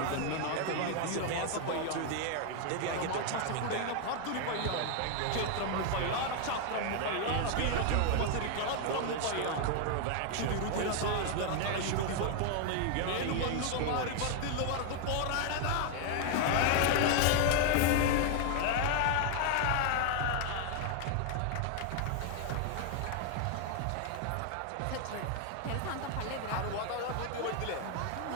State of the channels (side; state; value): both; different; correlation 0.00